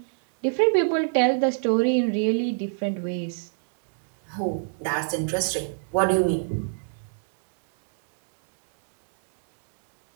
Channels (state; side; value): silent; left; digital silence